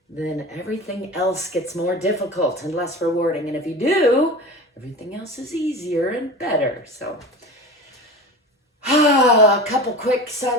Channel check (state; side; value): normal; both; correlation 0.32